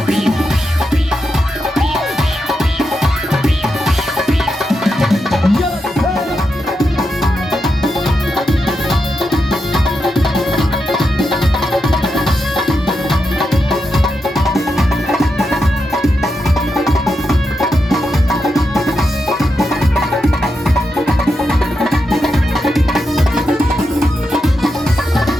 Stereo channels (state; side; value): normal; both; correlation 0.86